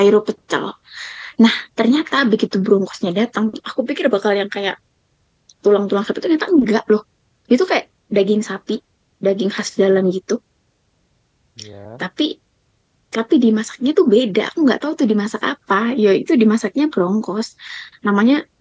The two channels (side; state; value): both; identical; correlation 1.00